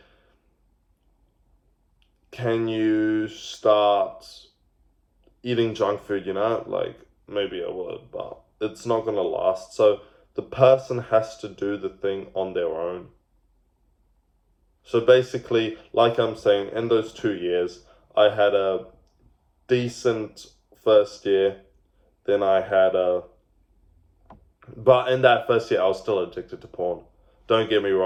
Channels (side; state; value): both; identical; correlation 1.00